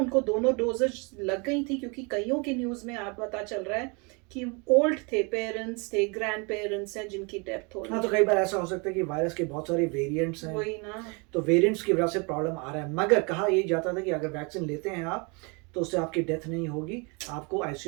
दोनों डोजेज लग गई थी? क्योंकि कईयों की न्यूज में आप पता चल रहा है कि ओल्ड थे, पेरेंट्स थे, ग्रैंड पेरेंट्स हैं जिनकी डेथ हो रही है। हाँ, तो कई बार ऐसा हो सकता है कि वायरस के बहुत सारे वेरिएंट्स हैं, वही ना, तो वेरिएंट्स की वजह से प्रॉब्लम आ रहा है। मगर कहा यही जाता था कि अगर वैक्सीन लेते हैं आप तो उससे आपकी डेथ नहीं होगी, आपको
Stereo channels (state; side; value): quieter; left; 31.4 dB